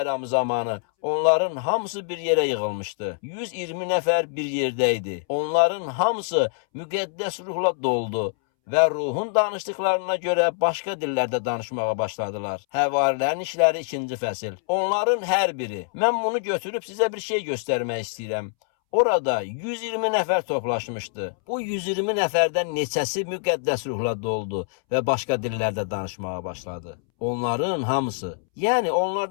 zamanı onların hamısı bir yerə yığılmışdı. 120 nəfər bir yerdə idi. Onların hamısı müqəddəs ruhla doldu və ruhun danışdıqlarına görə başqa dillərdə danışmağa başladılar. Həvarilərin İşləri 2-ci fəsil. Onların hər biri. Mən bunu götürüb sizə bir şey göstərmək istəyirəm. Orada 120 nəfər toplaşmışdı. Bu 120 nəfərdən neçəsi müqəddəs ruhla doldu və başqa dillərdə danışmağa başladı. Onların hamısı, yəni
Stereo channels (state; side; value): silent; right; 62 dB below the other